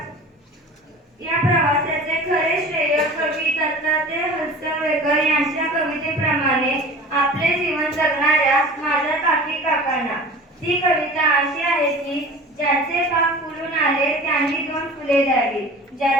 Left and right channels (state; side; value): normal; both; correlation 0.39